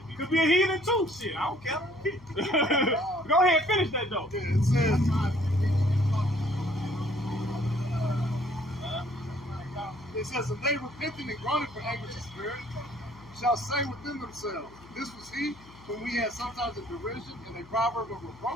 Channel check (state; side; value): noise; left; hum, 22 dB below the sound